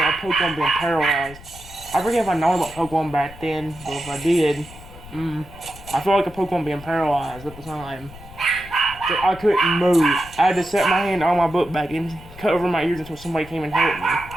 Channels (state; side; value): noise; left; rumble, 18 dB below the sound